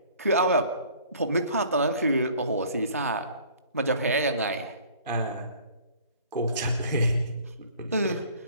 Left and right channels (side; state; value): both; inverted; correlation -0.52